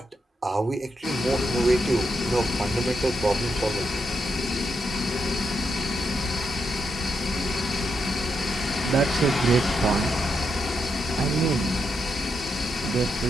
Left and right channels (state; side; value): normal; both; correlation 0.82